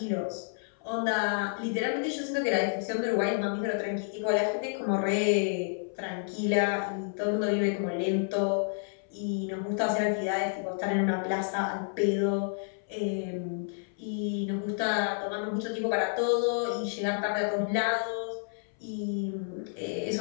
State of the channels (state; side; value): silent; right; 58 dB below the other